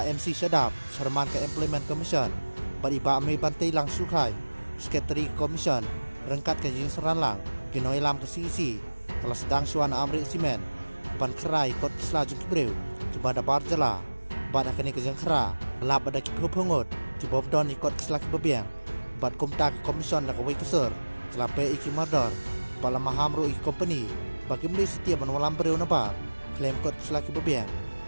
MC Syadap, Chairman ke Employment Commission, bat iba Amei Bantai Lang Sukai, Secretary Commission, rengkat ke Jing Seranlang, Ginoi Lam ke CEC, kelas sedang Syuana Amrit Simen, ban kerai kot kisla jeng kibreu, jembada barjala, bat akani ke Jeng Kera, lab ada kipho pengut, kibom don ikot kisla kibabiang, bat kumta ke Commission da kawai kesur, kelape iki mardor, bala mahamru iki company, bagi meni setiap menwalam bereu nabar, klaim kot kisla kibabiang,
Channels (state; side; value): inverted; both; correlation -1.00